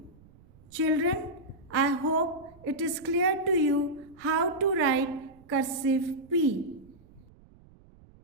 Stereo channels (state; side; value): noise; right; rumble, 25 dB below the sound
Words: Children, I hope it is clear to you how to write cursive P।